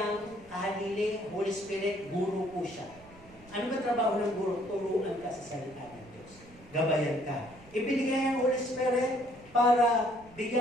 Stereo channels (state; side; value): noise; right; rumble, 23 dB below the sound